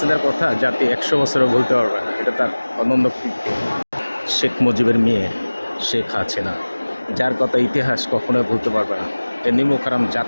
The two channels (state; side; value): inverted; both; correlation -1.00